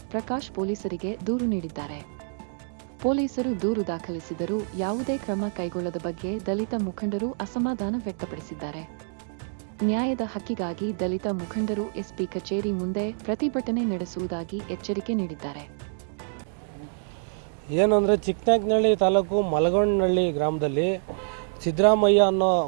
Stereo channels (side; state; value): left; silent; digital silence